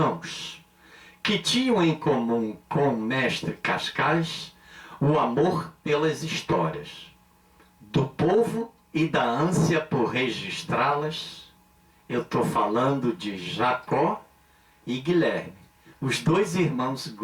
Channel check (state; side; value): identical; both; correlation 1.00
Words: que tinham em comum com o mestre Cascais o amor pelas histórias do povo e da ânsia por registrá-las. Eu estou falando de Jacó e Guilherme, os dois irmãos